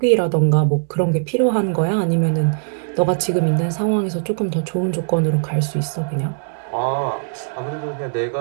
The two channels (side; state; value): left; silent; 66 dB below the other